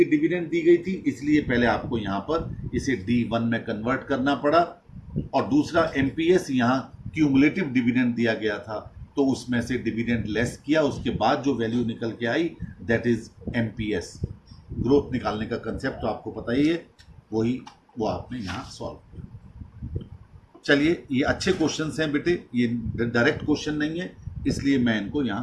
डिविडेंड दी गई थी, इसलिए पहले आपको यहां पर इसे D1 में कन्वर्ट करना पड़ा। और दूसरा MPS, यहां क्यूमुलेटिव डिविडेंड दिया गया था, तो उसमें से डिविडेंड लेस किया, उसके बाद जो वैल्यू निकल के आई दैट इज MPS। ग्रोथ निकालने का कंसेप्ट तो आपको पता ही है, वो आपने यहां सॉल्व किया। चलिए, ये अच्छे क्वेश्चंस हैं बेटे, ये डायरेक्ट क्वेश्चन नहीं है, इसलिए मैं इनको यहां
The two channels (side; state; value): both; identical; correlation 1.00